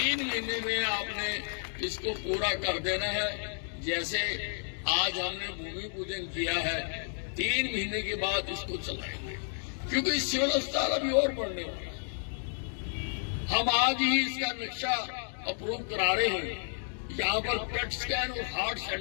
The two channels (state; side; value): silent; right; digital silence